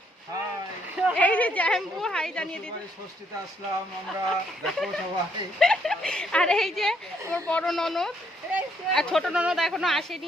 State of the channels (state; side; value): normal; both; correlation 0.71